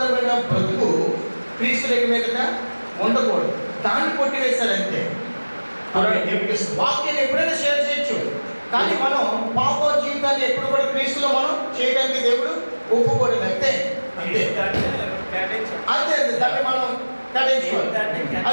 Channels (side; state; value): both; inverted; correlation -1.00